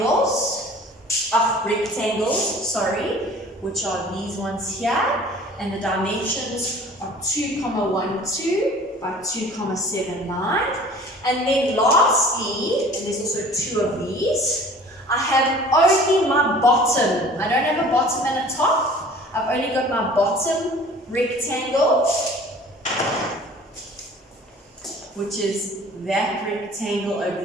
rectangles, which are these ones here, and the dimensions are 2,12 by 2,79. And then lastly, and there's also 2 of these, I have only my bottom. I don't have a bottom and a top. I've only got my bottom rectangle, which is that rectangle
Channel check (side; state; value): both; normal; correlation 0.47